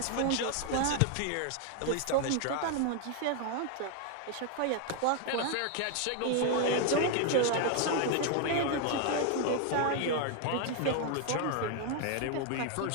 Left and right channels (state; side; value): different; both; correlation 0.00